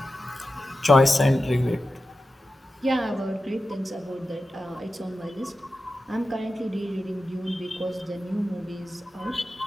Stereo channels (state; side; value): normal; both; correlation 0.92